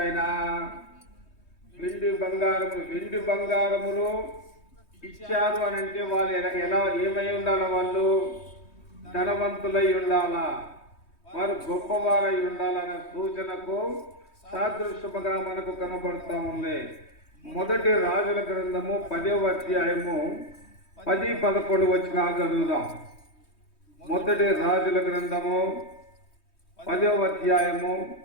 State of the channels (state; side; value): late; right; 3.2 ms